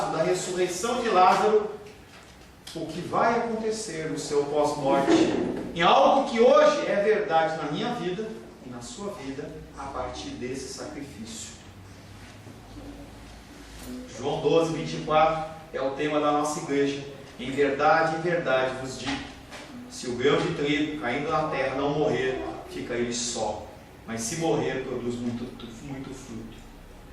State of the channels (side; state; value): both; identical; correlation 1.00